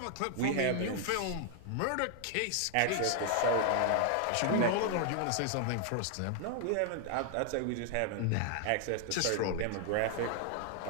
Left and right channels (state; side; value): different; both; correlation 0.00